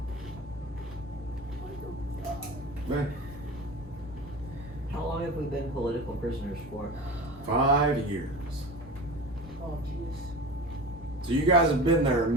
Man, How long have we been political prisoners for? 5 years. Oh, jeez. So you guys have been there a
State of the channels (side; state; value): both; normal; correlation 0.32